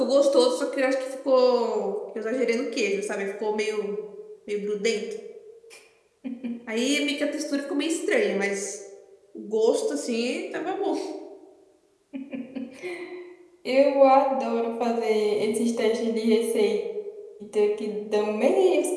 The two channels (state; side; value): identical; both; correlation 1.00